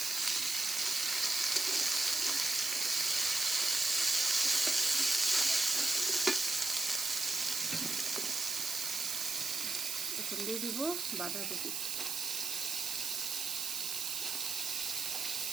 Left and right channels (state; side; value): noise; right; hiss, 2 dB below the sound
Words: এখন দিয়ে দিব বাঁধাকপি।